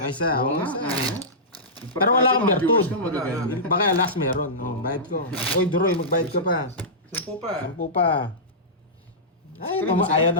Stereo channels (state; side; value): normal; both; correlation -0.16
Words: isa. Oo Oo, nga. isa. ah. Pero wala kang Mga bertud. viewers ko magaganda. Baka last meron. Oh, bayad ko. Oy, Duroy, magbayad ka pa. 10 pa. Sampu pa. Ay, Kailan ba ayaw